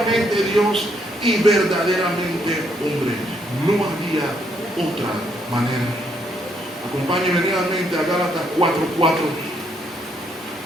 Dios y verdaderamente hombre. No había otra manera. Acompáñenme nuevamente a Gálatas 4:4.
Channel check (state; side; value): normal; both; correlation 0.73